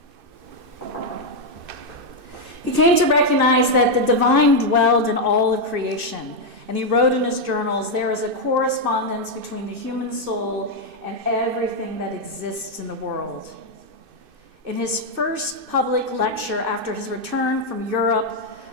He came to recognize that the divine dwelled in all of creation, and he wrote in his journals, "There is a correspondence between the human soul and everything that exists in the world." In his first public lecture after his return from Europe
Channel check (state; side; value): late; left; 2.6 ms